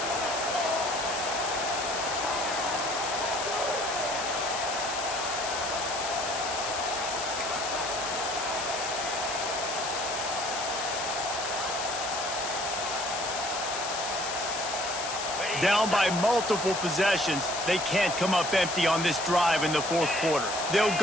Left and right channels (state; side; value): noise; left; hiss, 5 dB below the sound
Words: Down by multiple possessions, they can't come up empty on this drive in the 4th quarter. They'll